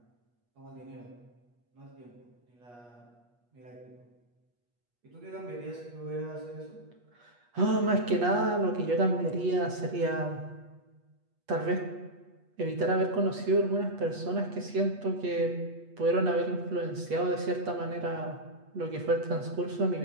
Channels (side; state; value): left; late; 8.3 ms